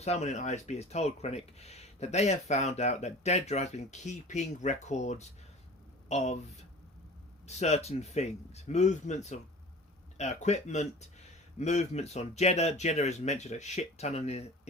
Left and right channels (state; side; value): normal; both; correlation 0.40